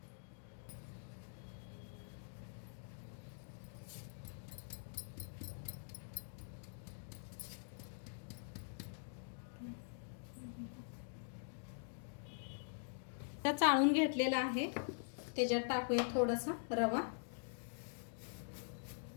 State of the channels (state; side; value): silent; right; digital silence